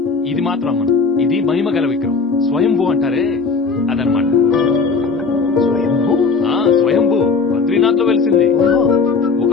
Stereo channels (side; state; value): right; quieter; 4.5 dB